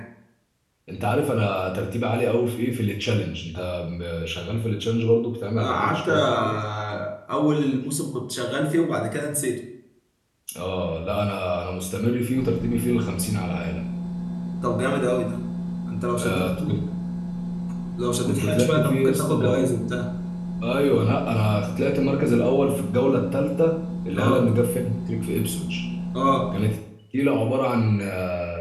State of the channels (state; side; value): identical; both; correlation 1.00